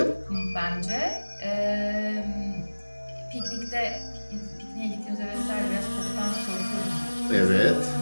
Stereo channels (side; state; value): both; inverted; correlation -1.00